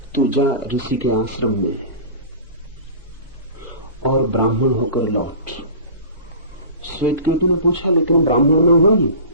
तू जा ऋषि के आश्रम में और ब्राह्मण होकर लौट। श्वेतकेतु ने पूछा लेकिन ब्राह्मण में हूं ही,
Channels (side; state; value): both; inverted; correlation -0.37